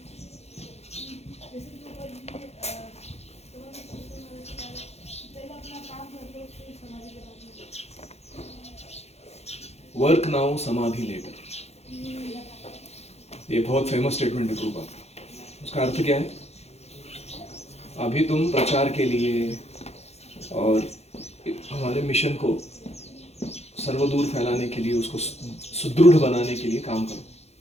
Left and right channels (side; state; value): right; late; 0.31 ms